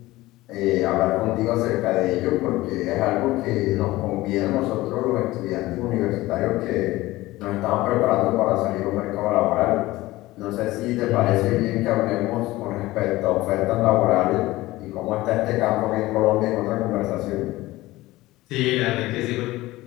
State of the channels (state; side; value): quieter; right; 18.3 dB